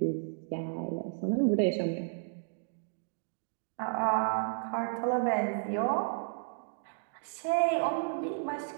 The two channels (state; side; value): silent; left; digital silence